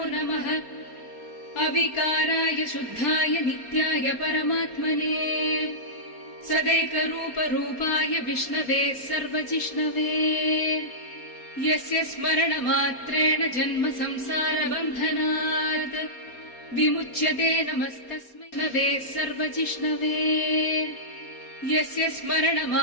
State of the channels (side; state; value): right; late; 4.3 ms